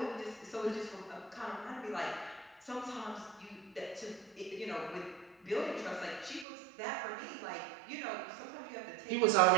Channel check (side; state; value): left; drops out; at 6.5 s